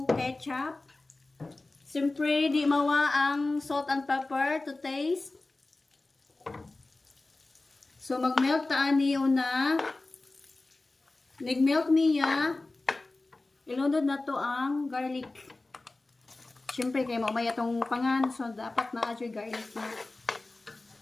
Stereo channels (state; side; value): quieter; right; 3.1 dB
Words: ketchup. Siyempre di mawa ang salt and pepper to taste. So mag-melt taan niyo na. Nag-melt niya, ilunod na to ang garlic. Siyempre, kaya maumaya itong pangan. So, dapat na adyo garlic na.